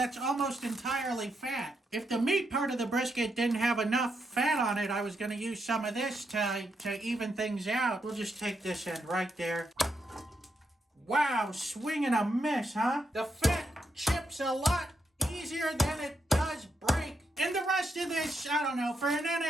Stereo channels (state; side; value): normal; both; correlation 0.81